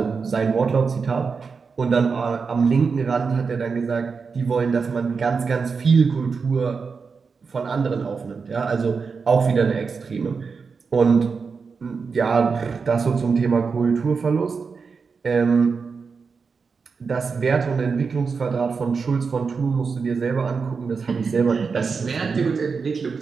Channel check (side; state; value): left; quieter; 5.2 dB